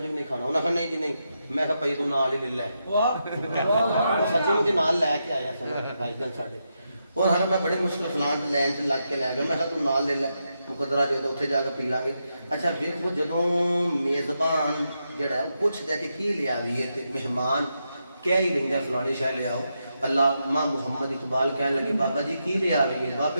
بھی نہیں کھانا انہاں کہ نہیں جی نہیں میں کہا پئی تو نال ہی لے لے سچی مجھے نال لے کے آیا سر بھائی جان ساڈے اور ہر میں بڑے مشکل فلان لین چ لگ کے لے گیا میں کہا تو نال لے لے مقدرہ جو اتنے جا کے پی لیں گے اچھا دیکھو جدوں میزبان جڑا ہے وہ پوچھتا ہے کہ کی لیا دیے تے مہمان کیا ہی لیندا فلانی شے لے آؤ علامہ محمد اقبال کہنے لگے بابا جی کی لے آ گئی بابے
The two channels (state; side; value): inverted; both; correlation -0.84